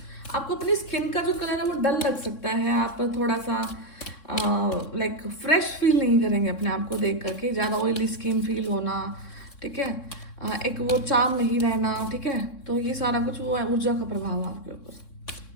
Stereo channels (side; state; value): right; late; 3.6 ms